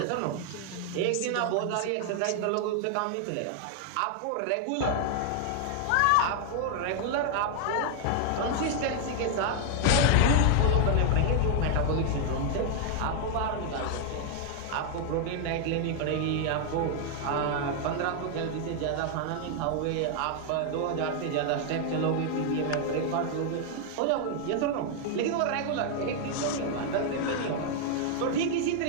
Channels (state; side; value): different; both; correlation 0.00